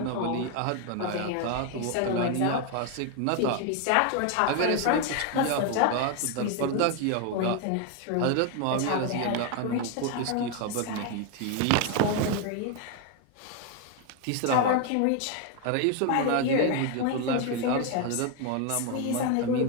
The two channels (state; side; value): different; both; correlation 0.01